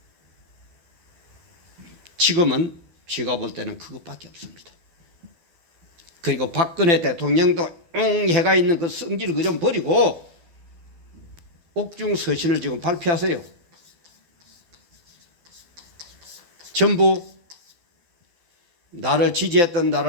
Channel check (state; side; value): late; left; 12 ms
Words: 지금은 제가 볼 때는 그것밖에 없습니다. 그리고 박근혜 대통령도 해가 있는 그 성질을 그 좀 버리고 옥중 서신을 지금 발표하세요. 전부 나를 지지했던